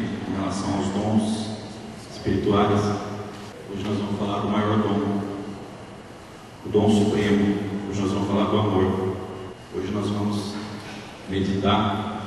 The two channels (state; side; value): identical; both; correlation 1.00